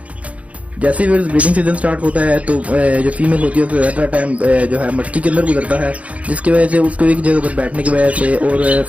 जैसे ही ब्रीडिंग सीजन स्टार्ट होता है तो जो फीमेल होती है उसका ज़्यादा टाइम जो है मटकी के अंदर गुजरता है, जिसकी वजह से उसको एक जगह पर बैठने की वजह से और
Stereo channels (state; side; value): late; left; 0.066 ms